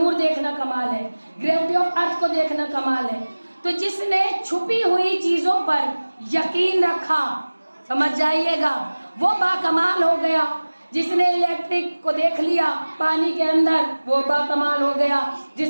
دیکھنا کمال ہے، گریوٹی آف ارتھ کو دیکھنا کمال ہے۔ تو جس نے چھپی ہوئی چیزوں پر یقین رکھا، سمجھ جائیے گا، وہ با کمال ہو گیا۔ جس نے الیکٹرک کو دیکھ لیا پانی کے اندر، وہ با کمال ہو گیا۔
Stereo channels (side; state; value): both; inverted; correlation -1.00